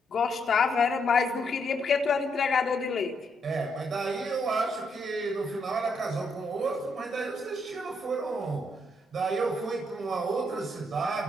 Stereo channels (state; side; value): normal; both; correlation 0.76